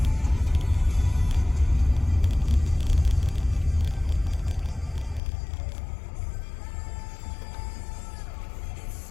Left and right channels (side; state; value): right; drops out; at 5.2 s